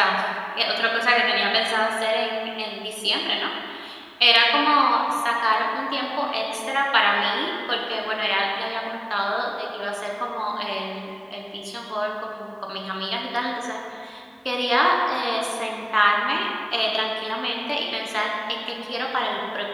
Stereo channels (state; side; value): identical; both; correlation 1.00